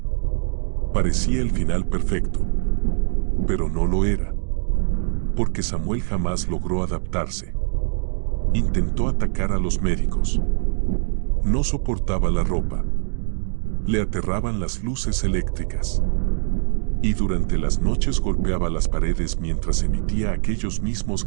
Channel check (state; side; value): silent; left; 60 dB below the other